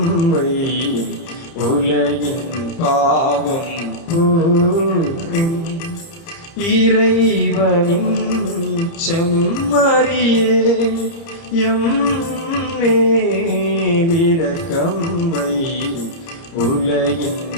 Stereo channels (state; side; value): late; right; 30 ms